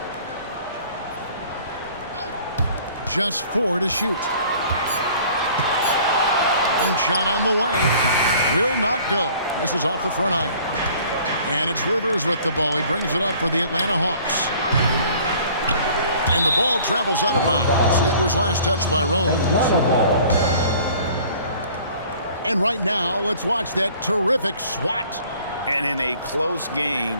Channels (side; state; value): both; inverted; correlation -0.52